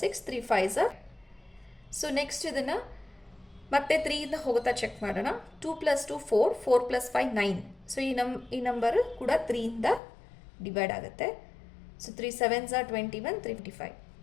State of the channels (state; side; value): drops out; right; at 10.0 s